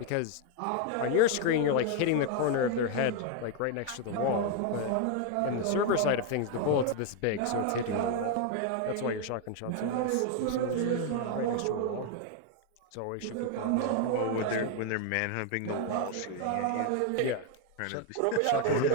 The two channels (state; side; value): different; both; correlation 0.01